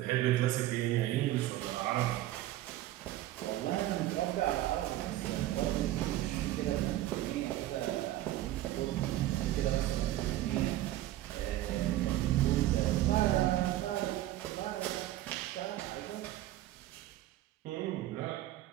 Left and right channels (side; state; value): left; quieter; 14.7 dB